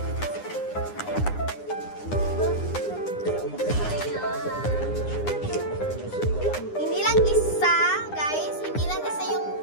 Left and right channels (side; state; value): right; late; 9.8 ms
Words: Hindi lang isa, guys. Hindi lang isa yung